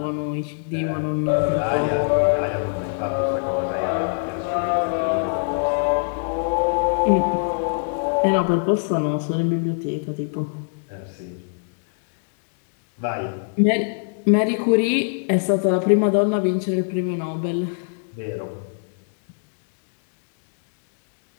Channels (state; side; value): silent; right; digital silence